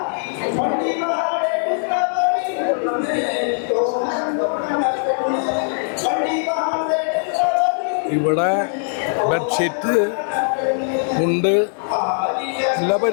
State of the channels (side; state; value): right; silent; digital silence